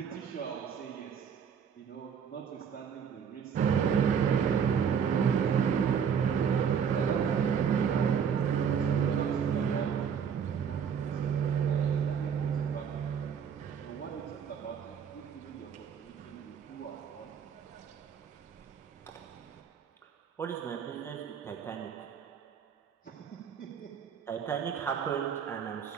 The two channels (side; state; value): left; quieter; 7.4 dB